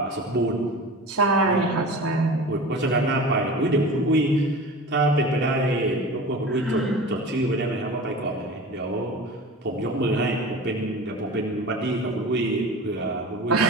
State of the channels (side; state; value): both; normal; correlation 0.35